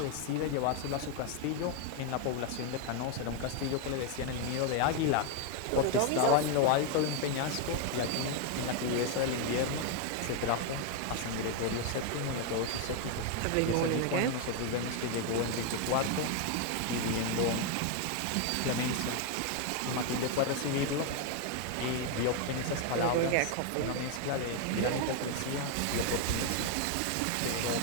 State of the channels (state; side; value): different; both; correlation 0.01